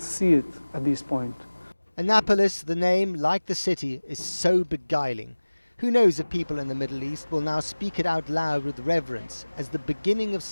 see it at this point. Annapolis, the name, like the city, is so beguiling. Who knows if people in the Middle East will now speak it out loud with reverence as the beginning of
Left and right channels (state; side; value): inverted; both; correlation -1.00